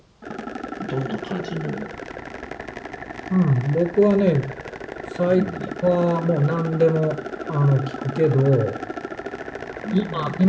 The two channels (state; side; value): identical; both; correlation 1.00